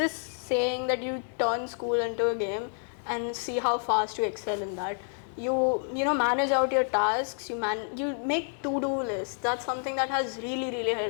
saying that you turn school into a game and see how fast you excel in that. You manage out your tasks. You make to-do lists. That's something that has really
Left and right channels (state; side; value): silent; right; 59 dB below the other